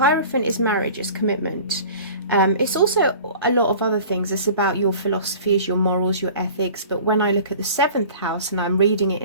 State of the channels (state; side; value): inverted; both; correlation -0.43